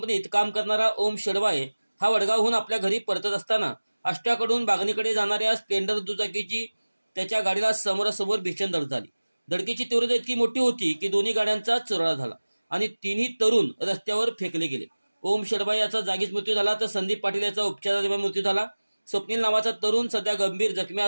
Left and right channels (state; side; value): inverted; both; correlation -1.00